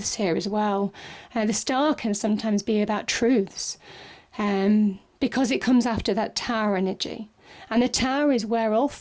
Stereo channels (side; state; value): both; identical; correlation 1.00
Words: here as well. The star can sometimes be about truths because it comes after that tower energy. And the tower is where all